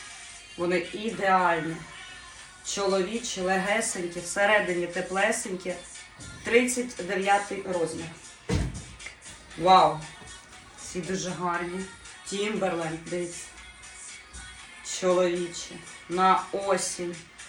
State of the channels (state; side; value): identical; both; correlation 1.00